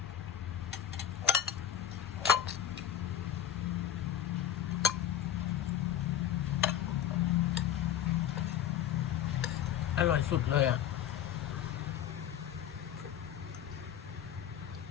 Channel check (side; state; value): right; quieter; 9.9 dB